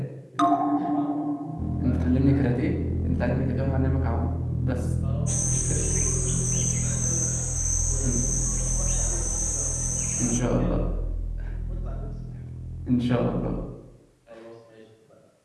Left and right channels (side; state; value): both; identical; correlation 1.00